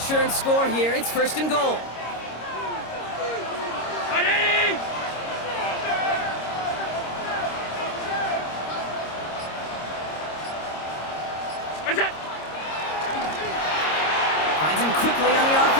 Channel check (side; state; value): right; late; 26 ms